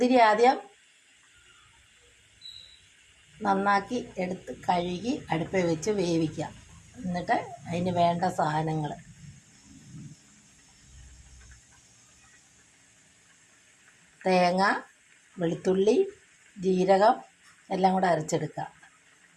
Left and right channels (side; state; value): both; identical; correlation 1.00